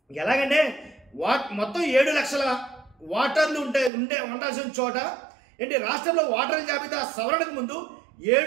ఎలాగంటే మొత్తం 7 లక్షల ఓటర్లు ఉండాల్సిన చోట ఏంటి రాష్ట్రంలో ఓటర్ల జాబితా సవరణకు ముందు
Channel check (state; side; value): drops out; left; at 3.9 s